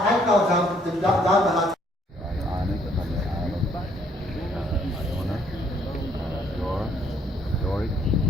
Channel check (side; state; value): both; normal; correlation 0.66